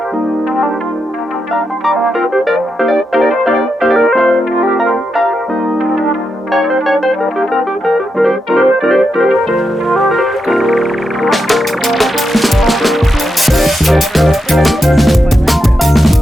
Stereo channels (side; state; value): both; normal; correlation 0.86